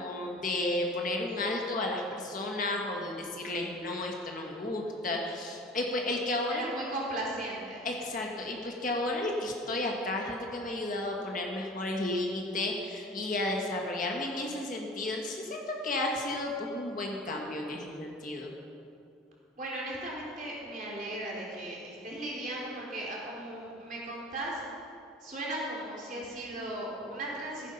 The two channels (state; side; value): normal; both; correlation 0.40